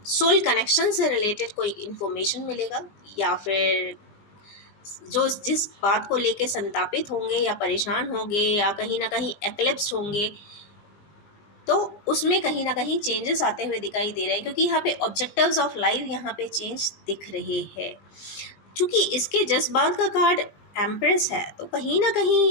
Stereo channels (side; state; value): right; late; 20 ms